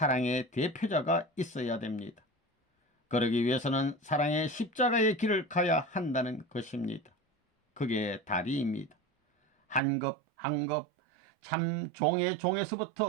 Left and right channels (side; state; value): left; drops out; at 9.8 s